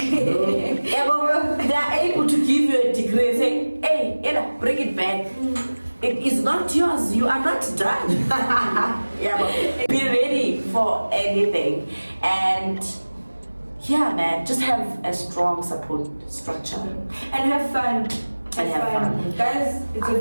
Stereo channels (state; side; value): inverted; both; correlation -1.00